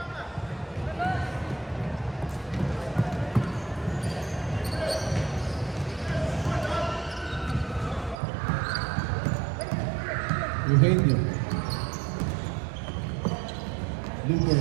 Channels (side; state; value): left; drops out; at 8.2 s